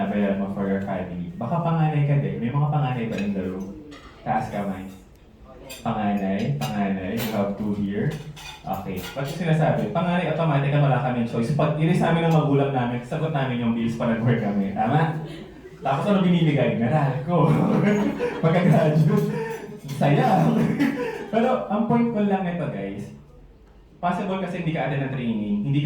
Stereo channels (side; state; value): both; identical; correlation 1.00